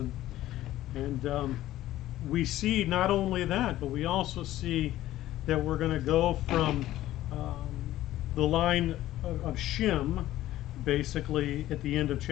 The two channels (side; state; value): right; quieter; 14.5 dB